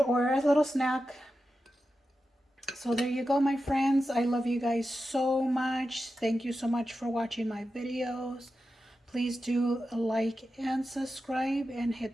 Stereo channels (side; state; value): both; normal; correlation 0.91